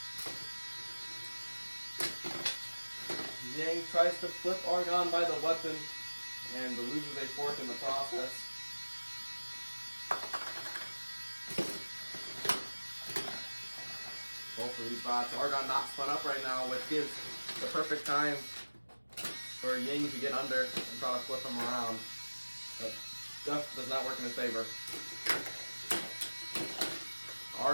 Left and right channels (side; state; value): both; inverted; correlation -1.00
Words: Yang tries to flip Argon by the weapon and loses a fourth in the process. Both of these bots. Argon not spun up right now, which gives the perfect time for Yang to get under and try to flip him around. But Duff does not work in his favor.